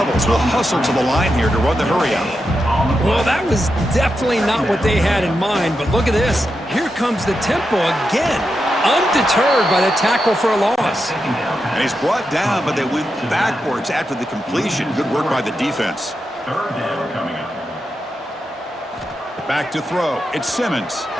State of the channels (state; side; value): normal; both; correlation 0.87